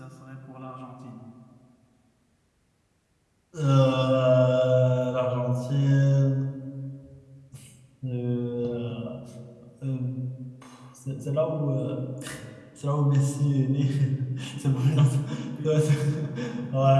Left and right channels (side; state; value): both; identical; correlation 1.00